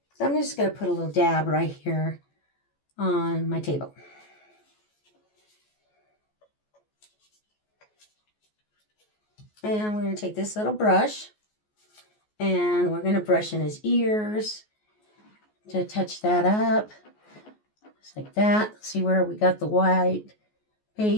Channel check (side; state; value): right; late; 14 ms